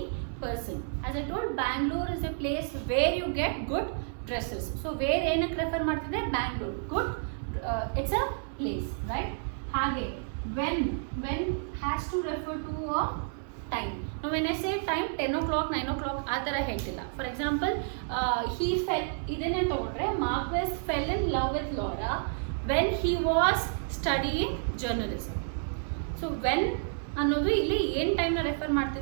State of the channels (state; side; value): silent; left; 58 dB below the other